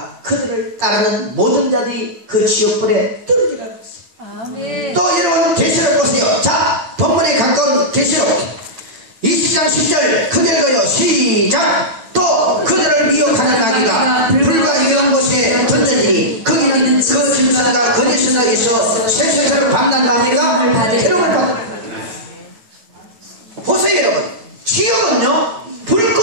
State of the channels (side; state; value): left; late; 8.9 ms